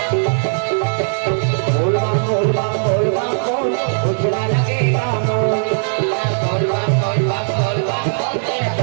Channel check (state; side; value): silent; left; digital silence